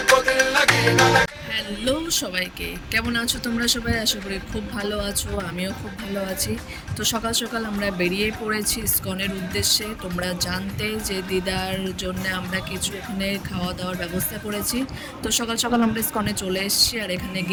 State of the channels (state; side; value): identical; both; correlation 1.00